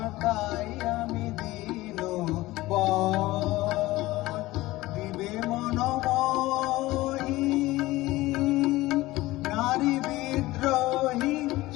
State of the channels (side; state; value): right; quieter; 18.5 dB